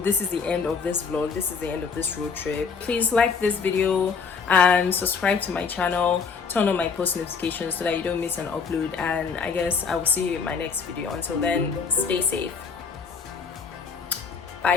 this is the end of this vlog. This is the end of this road trip. Please like this video and subscribe to my channel, turn on my post notifications so that you don't miss an upload, and I guess I will see you in my next video. Until then, stay safe.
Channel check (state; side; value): quieter; right; 5.6 dB